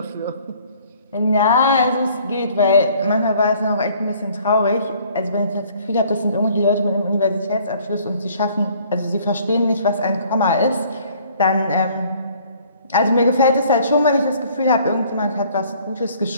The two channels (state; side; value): inverted; both; correlation -0.57